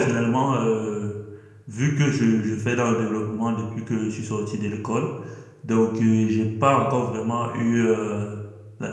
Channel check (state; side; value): identical; both; correlation 1.00